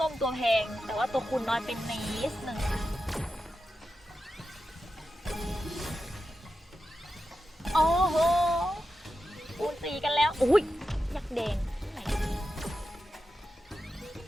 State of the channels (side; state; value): both; normal; correlation 0.90